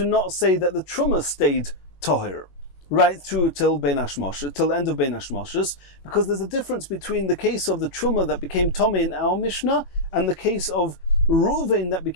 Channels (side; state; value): right; late; 22 ms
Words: not say that the Truma stayed tohir right through till Bein Hashmoshes, till the end of Bein Hashmoshes, because there's a difference between the case of the Truma that became tomei in our Mishnah and the case of Reuven that